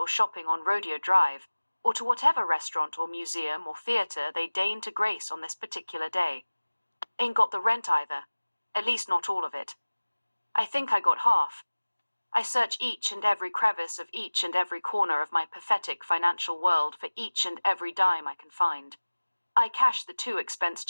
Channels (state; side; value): inverted; both; correlation -1.00